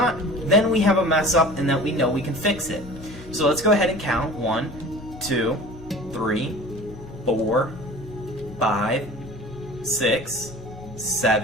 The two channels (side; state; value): both; normal; correlation 0.42